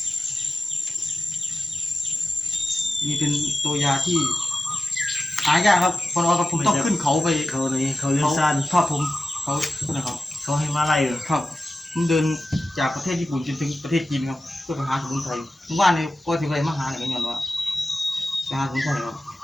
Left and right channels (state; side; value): normal; both; correlation 0.94